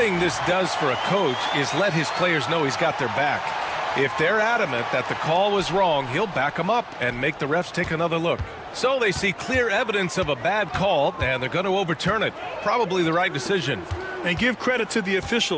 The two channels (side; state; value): both; identical; correlation 1.00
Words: this does for a coach is let his players know he's got their back. If they're adamant that the call was wrong, he'll back them up and make the refs take another look. So they see clear evidence of a bad call, and they're going to overturn it. Probably the right decision. And give credit to the